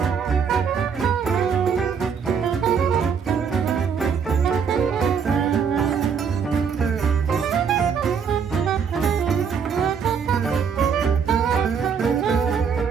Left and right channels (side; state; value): left; quieter; 6.6 dB